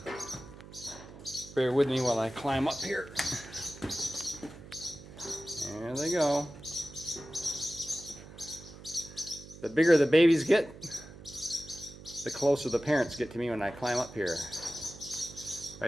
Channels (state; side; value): noise; right; hum, 17 dB below the sound